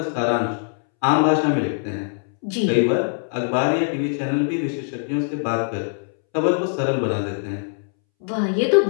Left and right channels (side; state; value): right; silent; 64 dB below the other